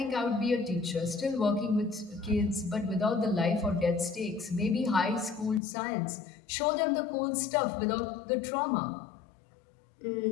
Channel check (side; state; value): right; drops out; at 5.6 s